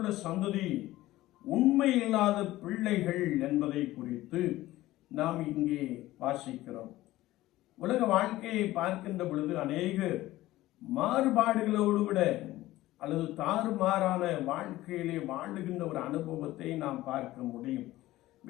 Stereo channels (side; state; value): right; quieter; 16.5 dB